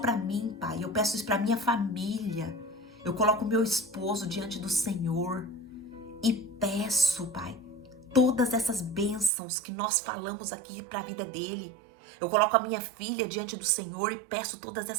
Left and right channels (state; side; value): drops out; left; at 9.3 s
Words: mim, Pai, eu peço isso para minha família. Eu coloco o meu esposo diante do Senhor e peço, Pai, todas essas bênçãos que nós falamos aqui para a vida dele. Eu coloco a minha filha diante do Senhor e peço todas